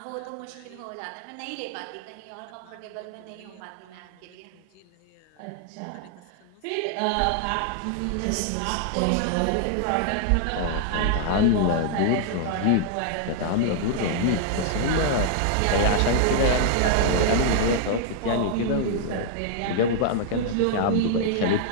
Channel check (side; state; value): both; different; correlation -0.01